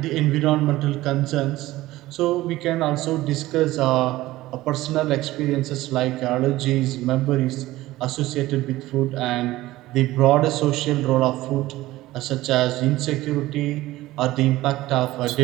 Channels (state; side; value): quieter; left; 17.0 dB